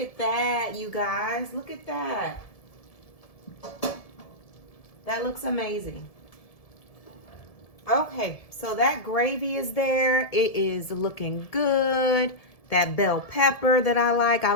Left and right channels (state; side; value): late; right; 1.7 ms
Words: at that, you guys. Look at that. That looks amazing. Okay, so that gravy is there. It is looking good. That bell pepper that I